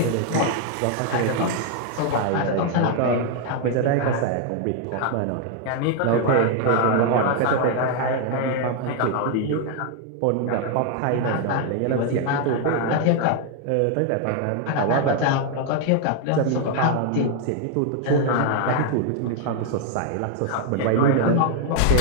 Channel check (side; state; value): both; different; correlation 0.00